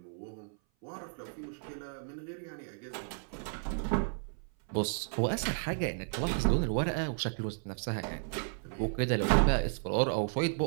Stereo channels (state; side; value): silent; left; 55 dB below the other